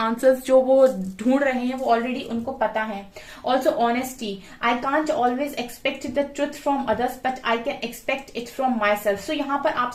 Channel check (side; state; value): both; identical; correlation 1.00